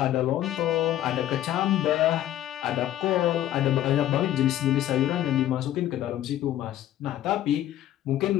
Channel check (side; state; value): right; quieter; 12.8 dB